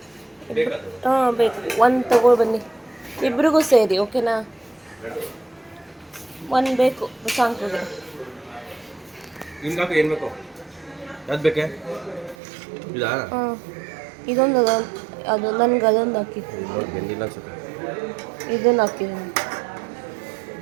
ಹಾಂ ಬೇಕು ಒಂದು ತಗೋ ಬನ್ನಿ ಇಬ್ರಿಗೂ ಸೇರಿ ಓಕೆನಾ ಒಂದು ಬೇಕು ಸಾಂಕ್ರಿಗೆ ಹಾಂ ಇದೊಂದು ಅದು ನನಗೆ ಅದೊಂದು ಹಾಕಿ ಇದನ್ನು ಹಾಕಿದ್ದೀನಿ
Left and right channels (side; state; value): left; drops out; at 12.4 s